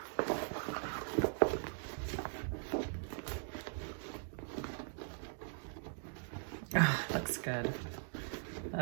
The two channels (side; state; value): left; silent; digital silence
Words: Oh, looks good.